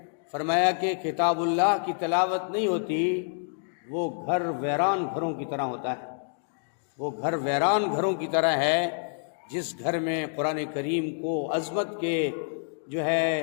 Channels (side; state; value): right; silent; digital silence